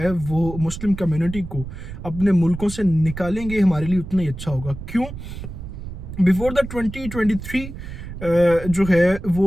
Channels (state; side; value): noise; right; rumble, 10 dB below the sound